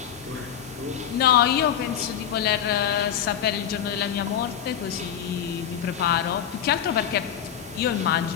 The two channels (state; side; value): quieter; right; 9.4 dB